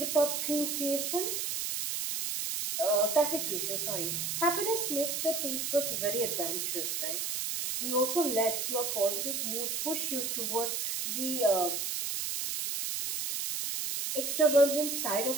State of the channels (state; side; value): noise; right; hiss, 1 dB below the sound